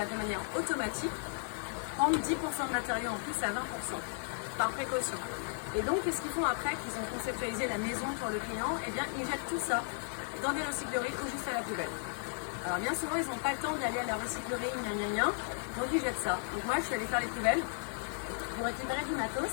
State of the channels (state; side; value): silent; right; 55 dB below the other